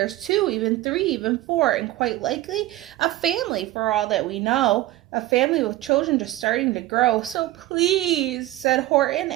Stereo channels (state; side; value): quieter; left; 16.4 dB